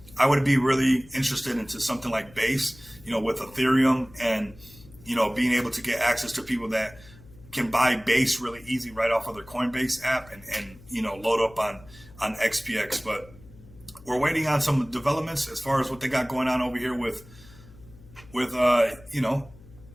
I would be really interested into something like Base, with Ethereum, and, being able to get access to people that can buy Base really easy right off of their Coinbase app and load up on XPX. But we're waiting on some developments as far as what they got going on over here with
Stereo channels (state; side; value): noise; left; hum, 22 dB below the sound